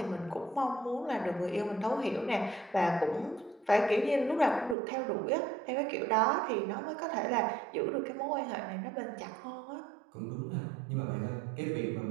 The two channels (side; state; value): left; drops out; at 4.8 s